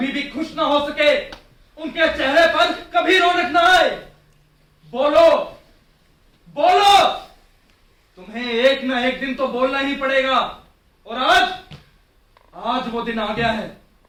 भी खुश ना हो सके, उनके चेहरे पर कभी रौनक ना आए? बोलो बोलो, तुम्हें एक ना एक दिन तो बोलना ही पड़ेगा। और आज वो दिन आ गया है।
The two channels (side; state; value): both; identical; correlation 1.00